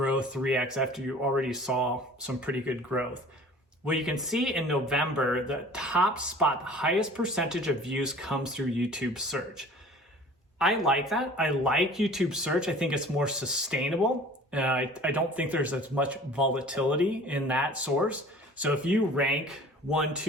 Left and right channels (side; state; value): both; normal; correlation 0.46